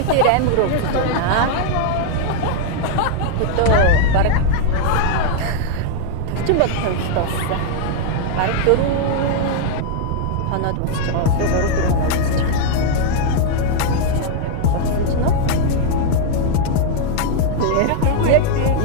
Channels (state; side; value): different; both; correlation 0.00